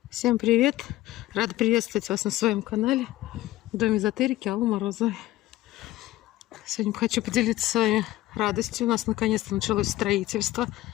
Всем привет! Рада приветствовать вас на своем канале Дом эзотерики Аллы Морозовой. Сегодня хочу поделиться с вами радостью. У нас наконец-то началось строительство.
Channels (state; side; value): quieter; right; 15.9 dB